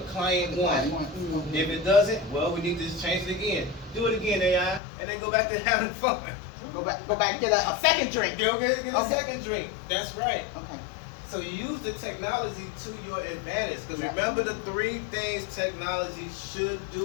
client wants? Okay. If it doesn't, well, we need to just change it again. Do it again, AI, and then go back to having fun. Go back and get a second drink. Go get a Okay. second drink. That's right. Okay. So you use the technology to your advantage. Because Yeah. remember the 3 things technology should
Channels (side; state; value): right; drops out; at 4.8 s